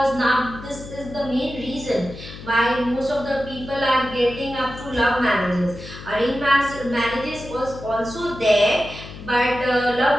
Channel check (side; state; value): left; noise; hum, 14 dB below the sound